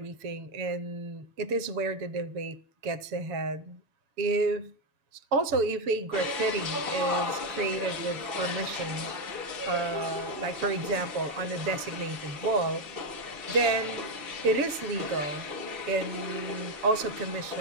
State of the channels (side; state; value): left; late; 7.1 ms